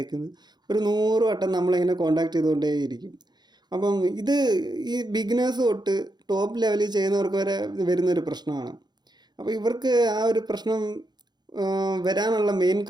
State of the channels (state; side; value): late; left; 0.21 ms